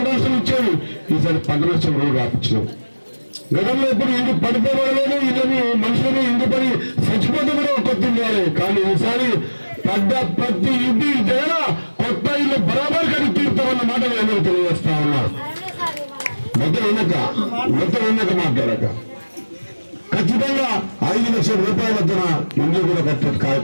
నష్టం ఇచ్చేది ఈసారి పంట నష్టం రోడ్డు రాపించినాం గతంలో ఎప్పుడు ఇంటి పడిపోవడలేదు ఇదని మనుషులని ఇంటి పడి చచ్చిపోతే కూడా కొత్త కానీ ఈసారి పడ్డ ప్రతి ఇంటి దగ్గర కొత్త ఇల్లు బరాబర్ కడిగి తీరుతామన్న మాట నేను తెలియజేస్తా ఉన్నా మొత్తం వెనక మాట్లాడక ఖచ్చితంగా 5 లక్షల రూపాయల వద్దన ఇల్లు కూడా కట్టే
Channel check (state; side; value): inverted; both; correlation -1.00